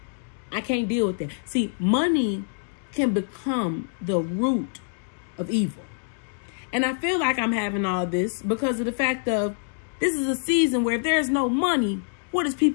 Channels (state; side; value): silent; right; digital silence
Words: I can't deal with that. See, money can become the root of evil. And I feel like I'm having all this because of the fact of this is a season where if there's no money, what is